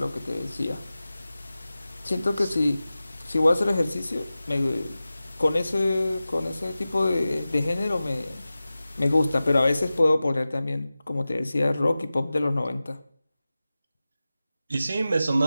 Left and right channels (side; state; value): both; inverted; correlation -0.96